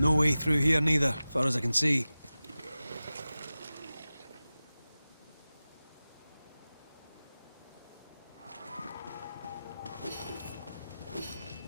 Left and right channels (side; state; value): both; inverted; correlation -0.96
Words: way through here neither, far as I can see.